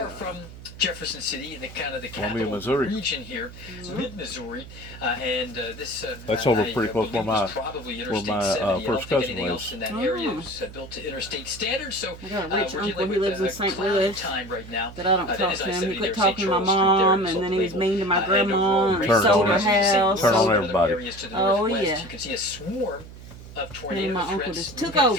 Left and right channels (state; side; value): noise; right; hum, 16 dB below the sound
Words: from Jefferson City in the kind of the Columbia, capital Missouri. region here, mid-Missouri, and this That's over I pretty close believe where was my- probably where Interstate my, 70. I don't first think cousin anything lives. else in that Oh. area is built to interstate standards. So I got a rich we're uncle. dealing He with lives in a St. cloudy Louis. time right now. But I don't That talk is to him. He I-70 quit there, talking St. to my Charles Street there, mom, sold and then the he was label. mean to my And grandma, overall, and he Turn sold on her everybody. house. Turn on sold- everybody. Areas to the Oh, northwest. yeah. You can see a swarm of tornado my uncle threats just took moving